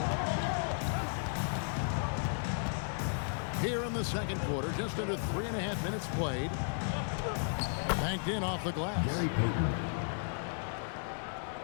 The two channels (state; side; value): silent; right; digital silence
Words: Here in the second quarter, just under 3.5 minutes played. Banked in off the glass.